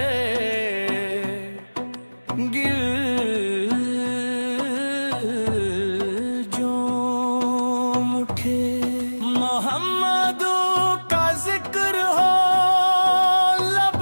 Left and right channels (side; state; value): both; inverted; correlation -1.00